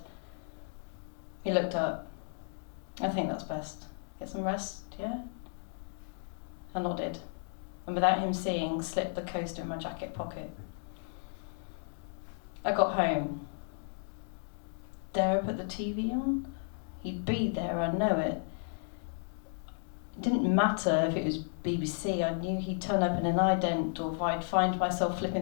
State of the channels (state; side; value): silent; right; digital silence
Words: He looked up. "I think that's best. Get some rest, yeah?" I nodded, and without him seeing, slipped the coaster in my jacket pocket. I got home. Dare I put the TV on? He'd be there, I know it. It didn't matter if it was BBC, I knew he'd turn up in an ident, or if I'd find myself